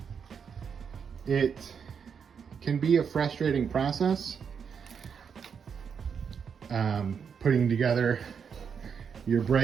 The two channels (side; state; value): left; quieter; 6.7 dB